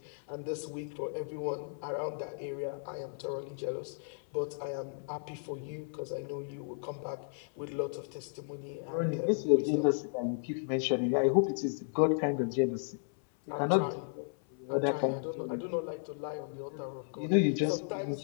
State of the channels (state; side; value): silent; right; 55 dB below the other